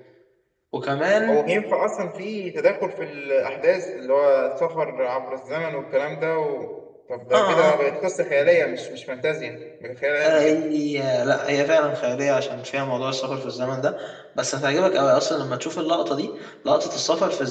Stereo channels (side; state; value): both; identical; correlation 1.00